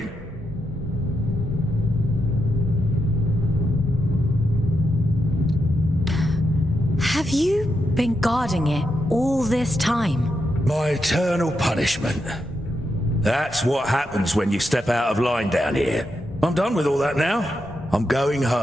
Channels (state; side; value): normal; both; correlation 0.84